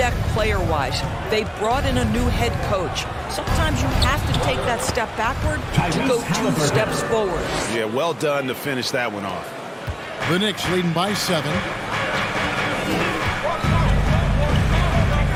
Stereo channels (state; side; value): identical; both; correlation 1.00